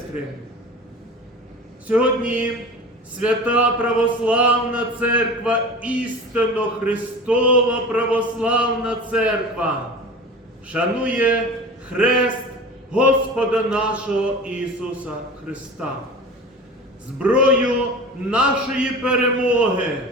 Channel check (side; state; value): both; normal; correlation 0.35